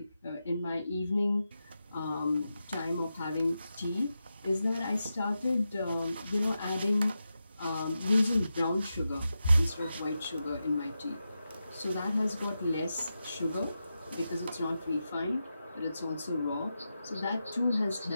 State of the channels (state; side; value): inverted; both; correlation -0.90